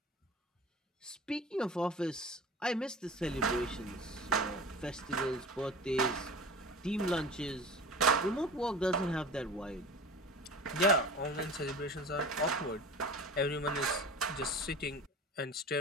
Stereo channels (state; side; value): normal; both; correlation 0.37